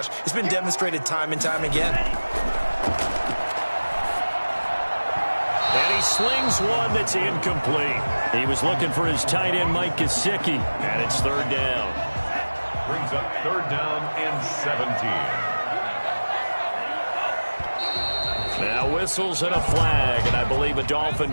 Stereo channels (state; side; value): inverted; both; correlation -1.00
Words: It's been demonstrated time and time again. And he slings one that's incomplete. He was looking for his tight end, Mike Gesicki, and it's 3rd down. Brings up 3rd down and 17. Now whistles and a flag, and I believe a Dolphin